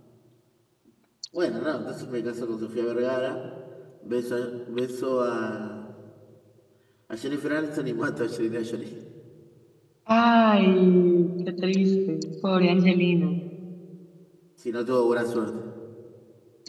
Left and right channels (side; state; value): both; identical; correlation 1.00